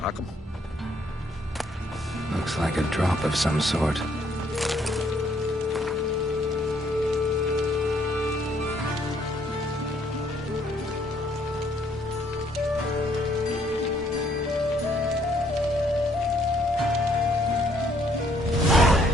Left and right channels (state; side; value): normal; both; correlation 0.67